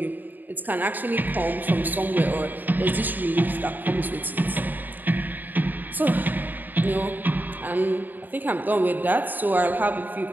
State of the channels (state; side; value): late; left; 0.088 ms